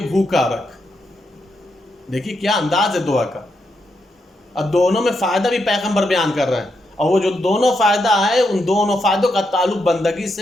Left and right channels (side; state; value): both; normal; correlation 0.82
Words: بھوکا رکھ۔ دیکھیے کیا انداز ہے دعا کا، اب دونوں میں فائدہ بھی پیغمبر بیان کر رہے ہیں، اور وہ جو دونوں فائدہ ہے ان دونوں فائدوں کا تعلق بندگی